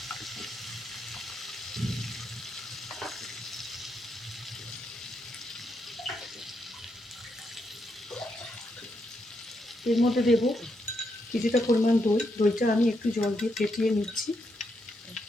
এর মধ্যে দেব কিছুটা পরিমাণ দই। দইটা আমি একটু জল দিয়ে ফেটিয়ে নিচ্ছি।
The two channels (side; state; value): both; normal; correlation 0.80